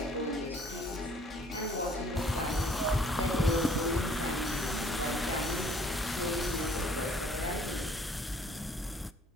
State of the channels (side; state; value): both; normal; correlation 0.58